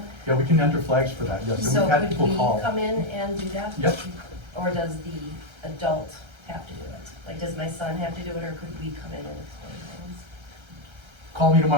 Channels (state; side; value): late; left; 1.3 ms